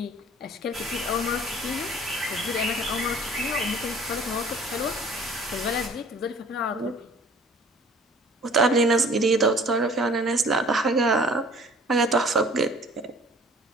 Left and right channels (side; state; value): both; normal; correlation 0.51